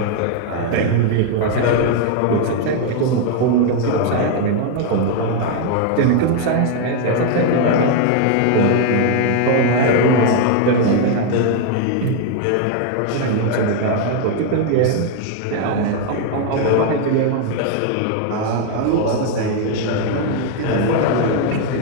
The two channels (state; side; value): different; both; correlation 0.00